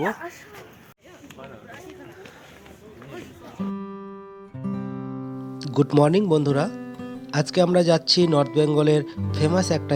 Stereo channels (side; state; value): both; identical; correlation 1.00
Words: গুড মর্নিং বন্ধুরা, আজকে আমরা যাচ্ছি নর্থ বেঙ্গলের ফেমাস একটা